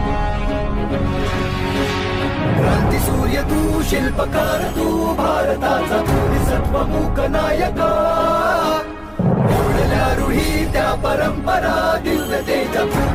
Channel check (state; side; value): identical; both; correlation 1.00